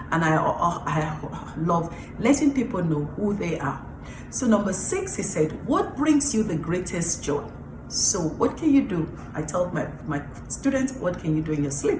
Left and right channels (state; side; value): identical; both; correlation 1.00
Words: and I love letting people know who they are. So number 6, he said, what brings you the greatest joy? So what can you do? I told my students, what can you do in your